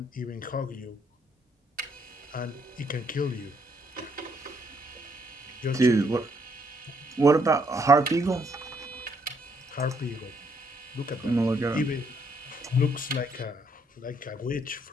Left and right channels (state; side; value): normal; both; correlation 0.71